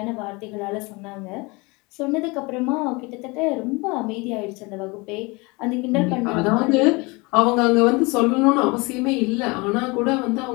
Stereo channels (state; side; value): quieter; right; 26.2 dB